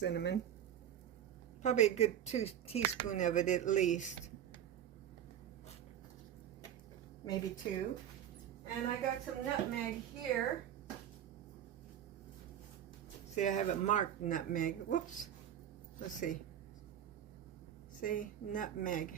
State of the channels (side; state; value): left; quieter; 10.1 dB